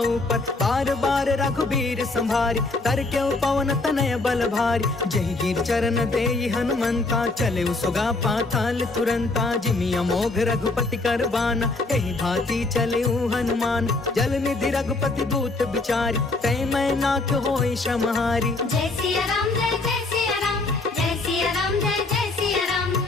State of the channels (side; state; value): right; quieter; 3.3 dB